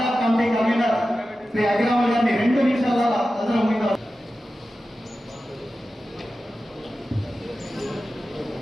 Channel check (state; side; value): normal; both; correlation 0.93